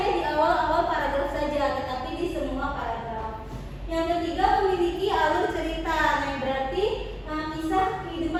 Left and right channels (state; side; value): identical; both; correlation 1.00